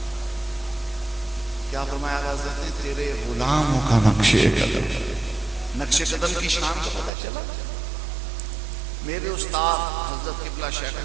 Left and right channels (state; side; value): drops out; left; at 7.1 s